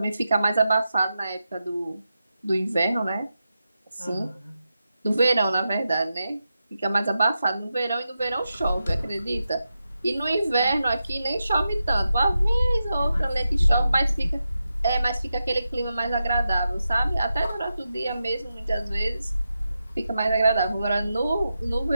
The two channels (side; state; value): both; inverted; correlation -0.89